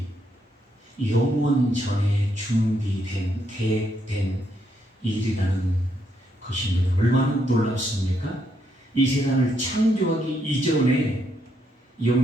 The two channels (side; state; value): both; normal; correlation 0.76